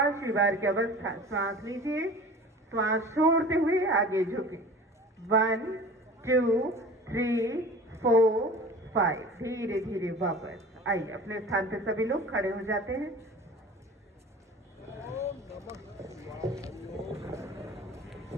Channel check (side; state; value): both; normal; correlation 0.40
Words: बार की अवस्था, श्वास लीजिए, श्वास छोड़ते हुए आगे झुके। 1 2 3 4 5। धीरे धीरे वापस आइए। अपने स्थान पर सभी लोग खड़े हो जाते हैं।